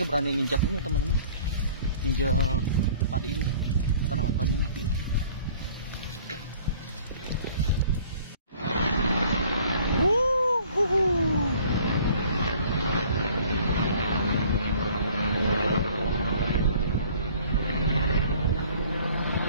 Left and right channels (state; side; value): inverted; both; correlation -0.53